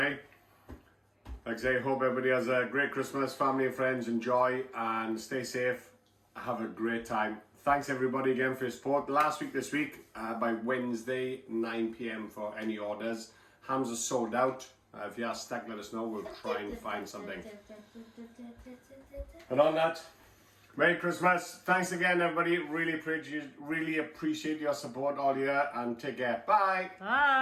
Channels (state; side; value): identical; both; correlation 1.00